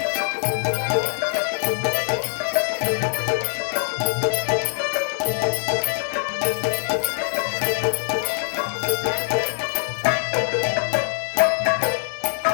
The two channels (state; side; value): silent; right; 61 dB below the other